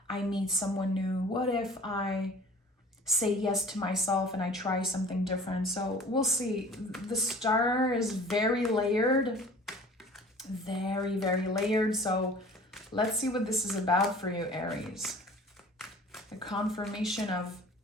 I meet someone new? What if I say yes to myself and I try something different? So we'll see. The Star is very layered. Very, very layered. So let's see what this is about for you, Aries. The confirmation of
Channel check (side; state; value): both; normal; correlation 0.46